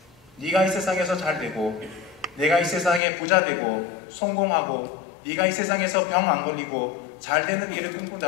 네가 이 세상에서 잘 되고 내가 이 세상에 부자 되고 성공하고 네가 이 세상에서 병 안 걸리고 잘 되는 일을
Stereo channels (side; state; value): right; drops out; at 3.0 s